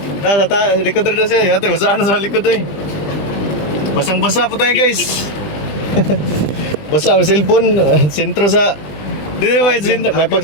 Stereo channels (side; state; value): right; late; 20 ms